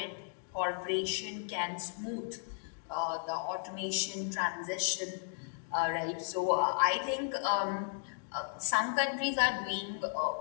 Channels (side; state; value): right; silent; digital silence